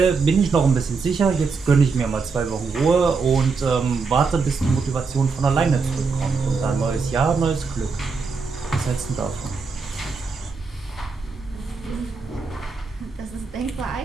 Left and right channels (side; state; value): left; quieter; 4.7 dB